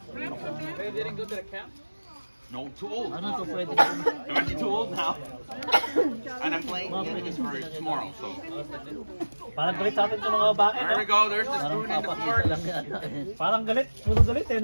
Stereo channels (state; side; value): inverted; both; correlation -1.00